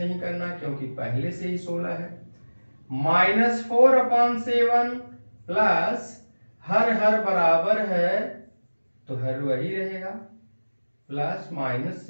करना क्योंकि पहले से ही 16 है। -4/7 प्लस हर बराबर है तो हर वही रहेगा, प्लस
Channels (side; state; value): both; inverted; correlation -1.00